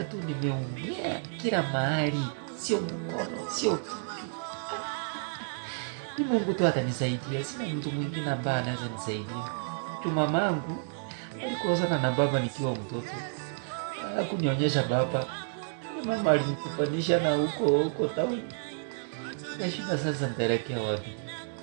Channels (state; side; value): silent; left; digital silence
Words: tu nimeumia kila mahali. Sio mkono, sio kitu. Ni Mungu tu atanisaidia. Sina mtu mwingine ambaye anaweza nisaidia. Tu mamangu alikosana na baba nikiwa mtoto. Hakunionyesha baba. Mama alinikufanisha na huko town. Nashinda sasa nitaelekea wapi?